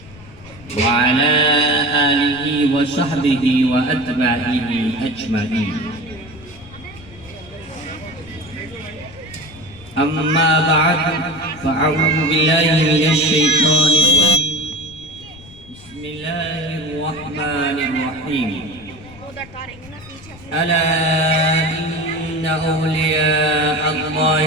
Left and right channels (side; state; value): left; noise; rumble, 20 dB below the sound